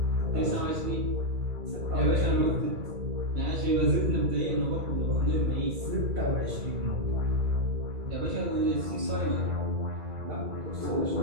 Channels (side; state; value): left; late; 2.3 ms